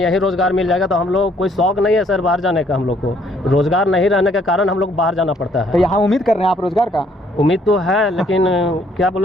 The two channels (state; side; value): normal; both; correlation 0.65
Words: रोजगार मिल जाएगा तो हम लोग कोई शौक नहीं है सर बाहर जाने का। हम लोग को रोजगार नहीं रहने के कारण हम लोग बाहर जाना पड़ता है। तो यहाँ उम्मीद कर रहे हैं आप रोजगार का? उम्मीद तो है, लेकिन क्या